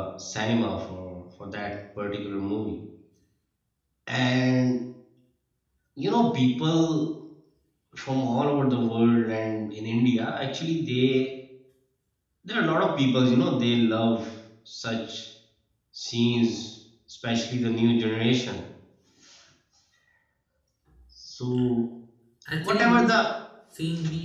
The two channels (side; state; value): both; identical; correlation 1.00